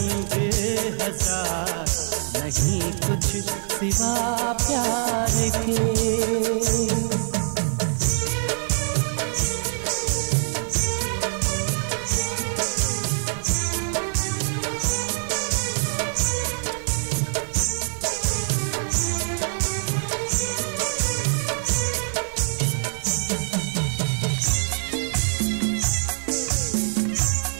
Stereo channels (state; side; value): silent; left; 62 dB below the other